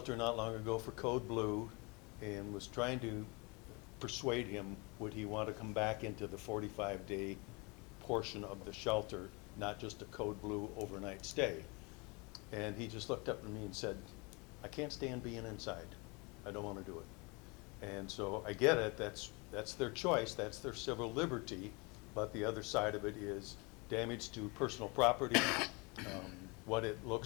not long ago for Code Blue, and was trying to persuade him, would he want to come back into the 45-day portion of the shelter, not just a Code Blue overnight stay. And he just looked up at me and said, I can't stand being inside. I don't want to do it. And so I get it, that's their choice, that's their civil liberty, but the other side of it is damage to personal property, what it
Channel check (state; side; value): quieter; right; 28.7 dB